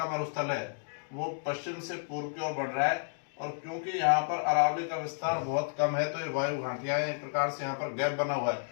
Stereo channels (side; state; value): right; silent; digital silence